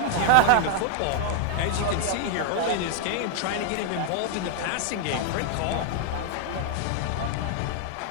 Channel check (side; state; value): both; different; correlation 0.00